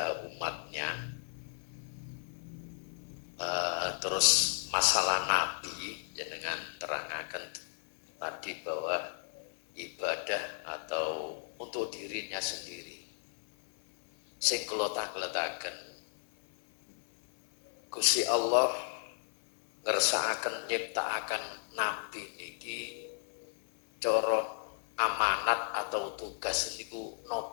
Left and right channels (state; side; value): silent; right; 55 dB below the other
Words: umatnya. Terus masalah Nabi jenengan terangkan tadi bahwa ibadah atau untuk dirinya sendiri. Sing kelota-kelotaken Gusti Allah ngersakaken nyiptakaken Nabi niki cara amanat atau tugas niku